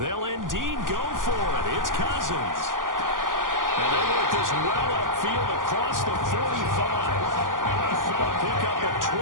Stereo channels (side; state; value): left; late; 0.89 ms